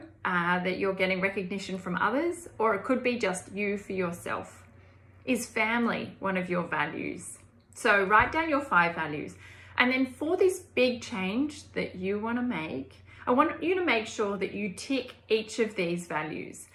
that you're getting recognition from others, or it could be just you for yourself. Is family one of your values? So write down your 5 values. And then for this big change that you want to make, I want you to make sure that you tick each of these values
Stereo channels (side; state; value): both; identical; correlation 1.00